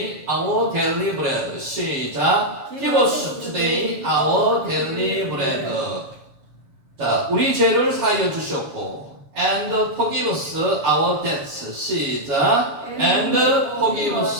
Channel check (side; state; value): left; late; 7.2 ms